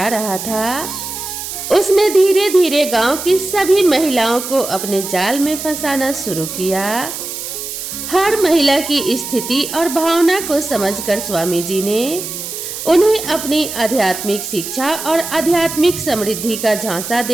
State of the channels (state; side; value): noise; right; hiss, 7 dB below the sound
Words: रहा था। उसने धीरे धीरे गांव की सभी महिलाओं को अपने जाल में फंसाना शुरू किया। हर महिला की स्थिति और भावना को समझकर स्वामी जी ने उन्हें अपनी आध्यात्मिक शिक्षा और आध्यात्मिक समृद्धि का झांसा